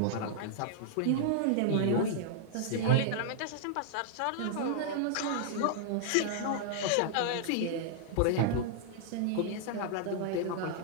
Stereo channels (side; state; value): both; different; correlation -0.01